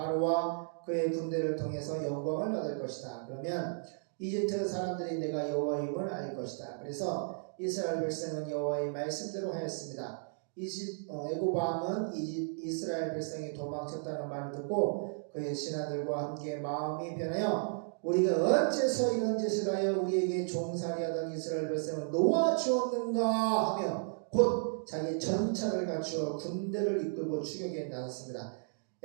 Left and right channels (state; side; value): silent; left; digital silence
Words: 그의 군대를 통해서 영광을 얻을 것이다. 그러면 이집트 사람들이 내가 여호와임을 알 것이다. 그래서 이스라엘 백성은 여호와의 말씀대로 하였습니다. 애굽 왕은 이스라엘 백성이 도망쳤다는 말을 듣고 그의 신하들과 함께 마음이 변하여 우리가 어째서 이런 짓을 하여 우리에게 종살이하던 이스라엘 백성을 놓아주었는가 하며 곧 자기 전차를 갖추어 군대를 이끌고 추격에 나섰습니다.